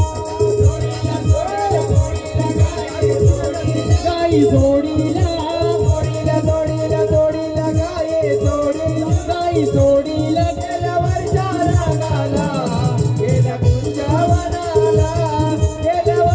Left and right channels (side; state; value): both; identical; correlation 1.00